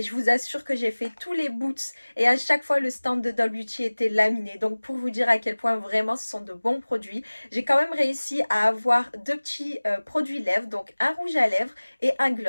je vous assure que j'ai fait tous les boots et à chaque fois le stand de Doll Beauty était laminé. Donc pour vous dire à quel point vraiment ce sont de bons produits, j'ai quand même réussi à avoir deux petits produits lèvres, donc un rouge à lèvres et un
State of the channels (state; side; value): inverted; both; correlation -1.00